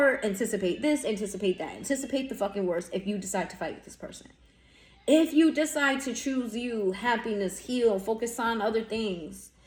anticipate this, anticipate that, anticipate the fucking worst if you decide to fight with this person. If you decide to choose you, happiness, heal, focus on other things,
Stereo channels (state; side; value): identical; both; correlation 1.00